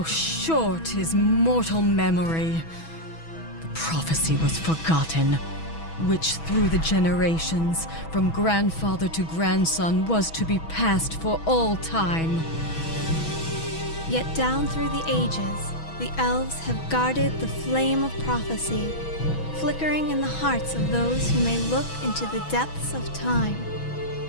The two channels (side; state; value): right; late; 6.1 ms